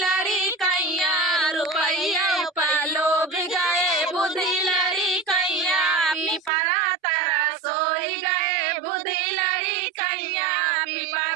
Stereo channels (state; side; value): drops out; left; at 6.5 s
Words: कैया, रुपैया पालो भी गए बुद्धि लड़ी कैया, पिपरा तारा सोई गए बुद्धि लड़ी कैया,